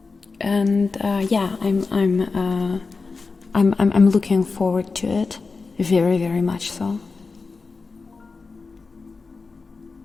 and yeah, I'm looking forward to it, very, very much so.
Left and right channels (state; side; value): quieter; right; 4.3 dB